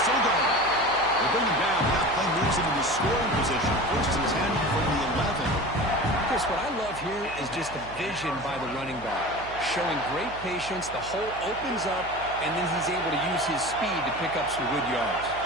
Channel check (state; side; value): noise; right; hum, 16 dB below the sound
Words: still going. They bring him down. That play moves him into scoring position. 1st and 10 from the 11. Chris, what I love here is just the vision by the running back. Showing great patience, the hole opens up, and then he's able to use his speed to pick up some good yards.